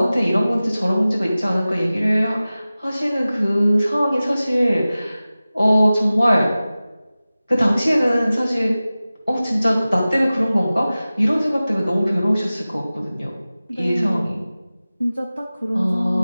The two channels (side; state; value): both; inverted; correlation -0.97